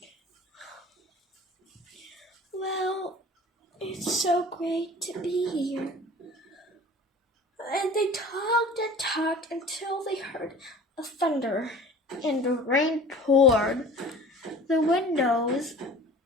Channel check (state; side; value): normal; both; correlation 0.42